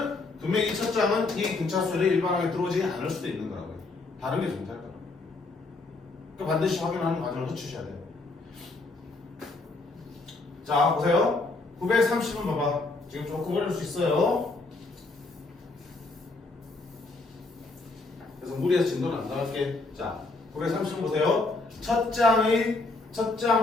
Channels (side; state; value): right; quieter; 3.4 dB